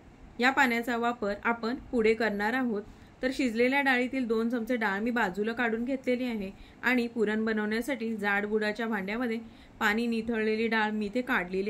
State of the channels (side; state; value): both; identical; correlation 1.00